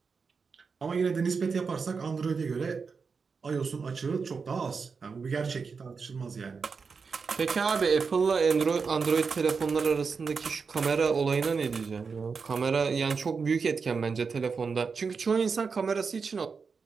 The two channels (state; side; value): quieter; left; 5.2 dB